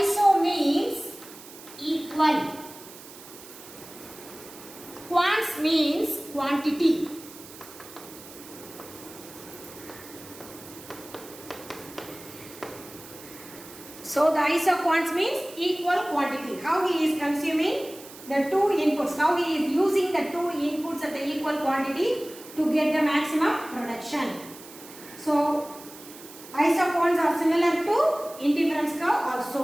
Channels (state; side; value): noise; right; hiss, 17 dB below the sound